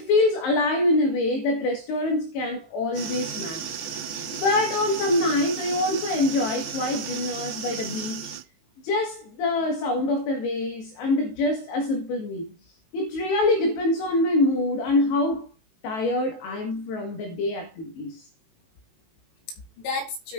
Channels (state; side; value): late; right; 18 ms